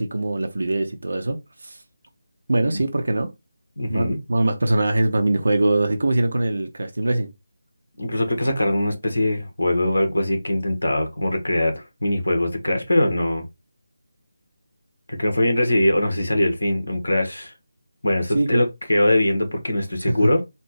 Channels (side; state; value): both; inverted; correlation -0.94